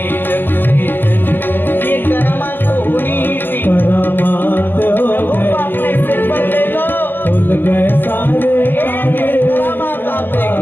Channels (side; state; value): right; late; 0.091 ms